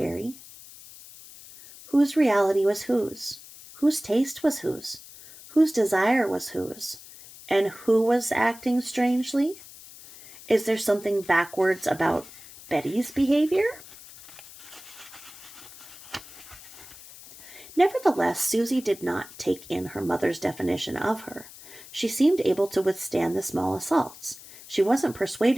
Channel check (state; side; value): noise; left; hiss, 18 dB below the sound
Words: Whose reality was whose? Whose taste was whose? Whose desire was whose? And who was acting strangely? Is there something backwards about Betty's behavior? Nevertheless, Susie did not take in her mother's definition of her. She seemed able to withstand the small assaults. She wasn't